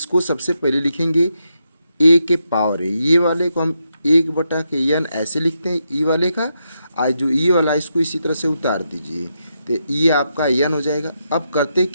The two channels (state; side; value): inverted; both; correlation -0.83